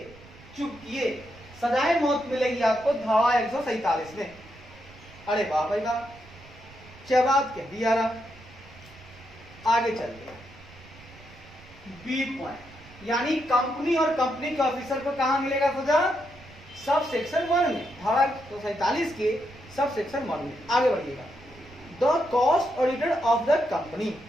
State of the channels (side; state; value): right; noise; rumble, 21 dB below the sound